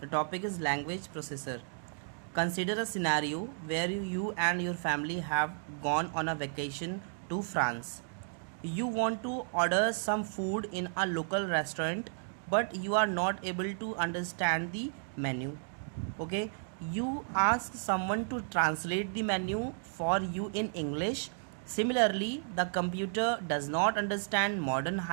topic is language processor. Consider a scenario where you and your family have gone on a vacation to France. You want to order some food in a local restaurant, but you are not able to understand the menu. Okay, you ask someone to translate the menu for you in English. Similarly, the computer does not understand modern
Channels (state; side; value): silent; left; digital silence